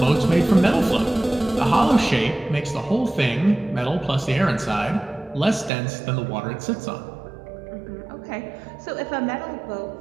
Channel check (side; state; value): left; drops out; at 5.7 s